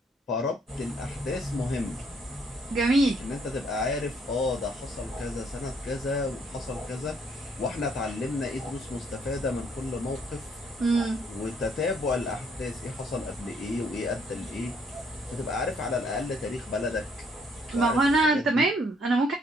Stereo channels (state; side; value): normal; both; correlation 0.67